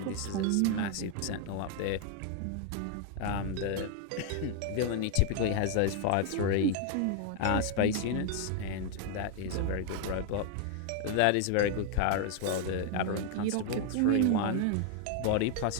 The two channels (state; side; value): different; both; correlation 0.01